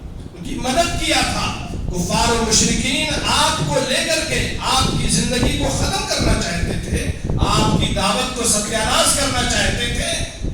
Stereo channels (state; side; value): identical; both; correlation 1.00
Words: کی مدد کیا تھا. کفار و مشرکین آپ کو لے کر کے آپ کی زندگی کو ختم کرنا چاہتے تھے, آپ کی دعوت کو ستیاناش کرنا چاہتے تھے,